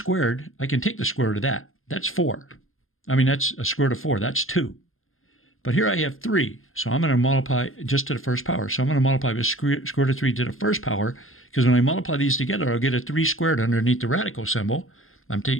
I can take the square root of that. That's 4. That's a square root of 4. That's 2. But here I have 3, so I'm going to multiply just to the first power. So I'm going to multiply by square root of 3 to the first power, because when I multiply these together, I'll get a 3 squared underneath the radical symbol. I'm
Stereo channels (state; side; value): late; right; 0.60 ms